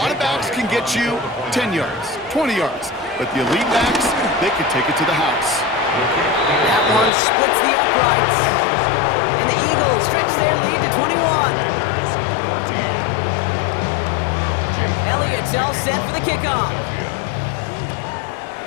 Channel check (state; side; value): drops out; right; at 7.1 s